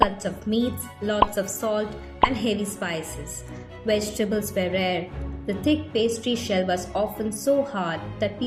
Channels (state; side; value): identical; both; correlation 1.00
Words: of meats, lots of salt, and heavy spices. Vegetables were rare. The thick pastry shell was often so hard that